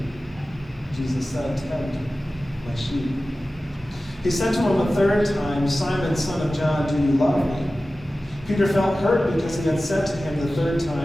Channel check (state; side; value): normal; both; correlation 0.95